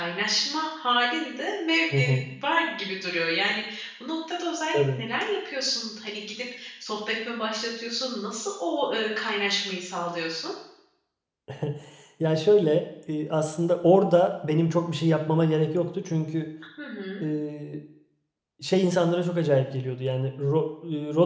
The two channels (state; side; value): identical; both; correlation 1.00